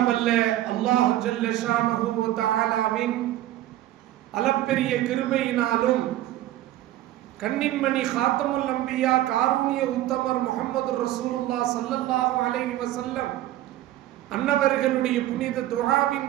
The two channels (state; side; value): quieter; left; 14.3 dB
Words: வல்ல அல்லாஹ் ஜல்ல ஷானஹு வ தஆலாவின் அளப்பெரிய கிருபையினாலும் கண்ணின்மணி காத்தமுல் அம்பியா காரூணிய உத்தமர் முஹம்மது ரசூலுல்லாஹ் ஸல்லல்லாஹு அலைஹி வஸல்லம் அன்னவர்களுடைய புனித துஆவின்